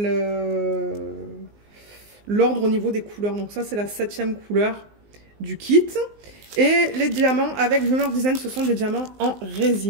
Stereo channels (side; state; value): left; late; 19 ms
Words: l'ordre au niveau des couleurs. Donc ça, c'est la 7e couleur du kit. Et les diamants avec Dreamer Design, ce sont des diamants en